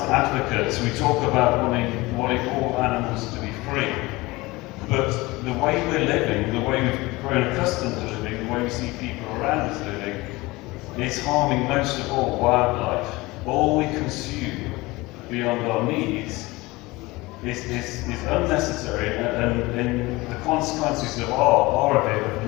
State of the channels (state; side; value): quieter; right; 21.6 dB